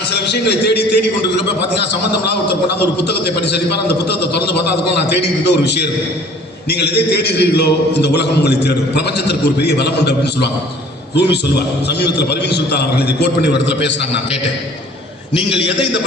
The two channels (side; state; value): both; normal; correlation 0.51